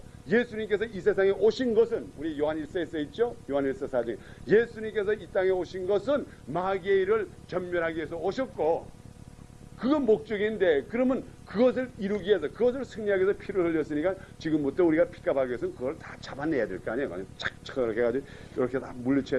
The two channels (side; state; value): both; identical; correlation 1.00